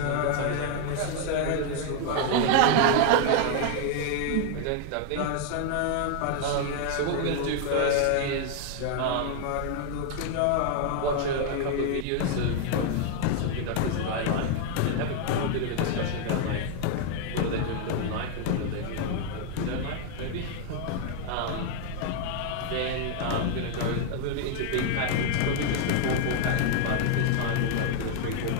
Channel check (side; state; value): both; different; correlation 0.00